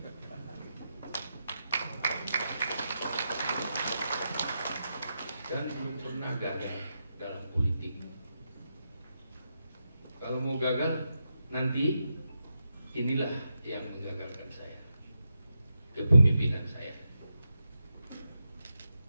Dan belum pernah gagal dalam politik. Kalau mau gagal, nanti inilah yang menggagalkan saya, kepemimpinan saya.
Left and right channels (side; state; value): both; inverted; correlation -0.87